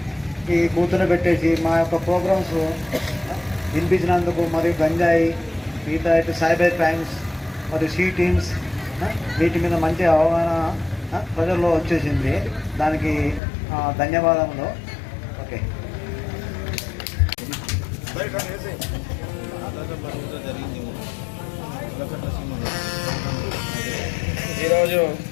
ఈ కూర్చొని మా యొక్క ప్రోగ్రామ్స్ వినిపించినందుకు మరియు గంజాయి మిగతా సైబర్ క్రైమ్స్ మరియు సీ టీమ్స్ వీటి మీద మంచి అవగాహన ప్రజల్లో వచ్చేసింది. దానికి ధన్యవాదములు. ఓకే. ఈరోజు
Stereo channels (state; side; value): drops out; right; at 13.4 s